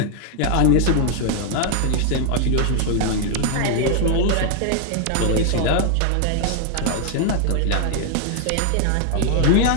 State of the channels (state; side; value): different; both; correlation 0.00